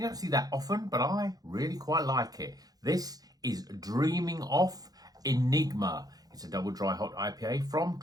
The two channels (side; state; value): left; late; 0.18 ms